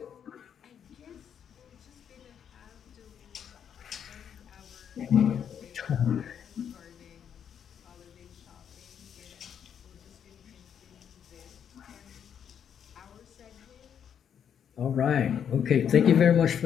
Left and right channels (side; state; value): right; quieter; 8.4 dB